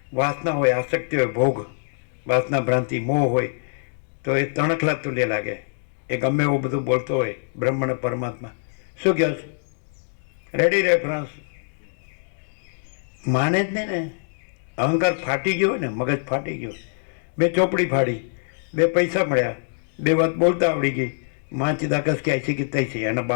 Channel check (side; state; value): right; silent; digital silence